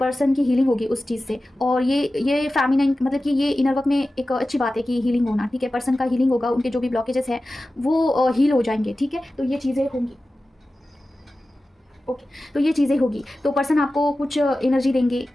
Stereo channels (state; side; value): normal; both; correlation 0.95